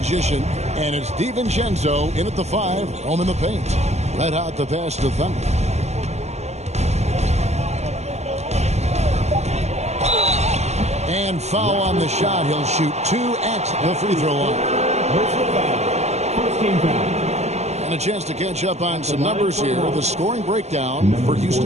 And it's DiVincenzo in at the 5. Home in the paint. Red Hot the pass to Thunder. And And foul on the shot. He'll shoot 2 at the free throw line. First team foul. And a chance to catch up on some numbers here. The scoring breakdown for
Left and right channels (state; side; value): late; left; 0.32 ms